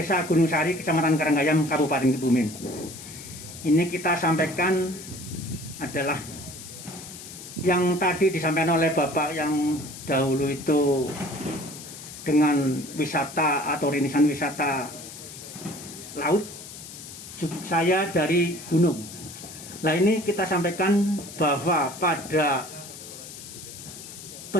Gunung Sari, Kecamatan Karanggayam, Kabupaten Kebumen. Ini kita sampaikan adalah yang tadi disampaikan oleh Bapak yang dahulu itu dengan wisata atau rintisan wisata laut. Saya dari gunung. Nah, ini kita sampaikan bahwa pada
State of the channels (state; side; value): noise; left; hiss, 14 dB below the sound